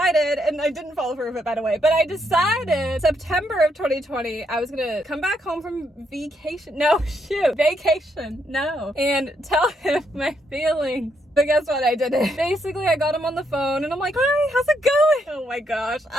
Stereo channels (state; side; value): normal; both; correlation 0.76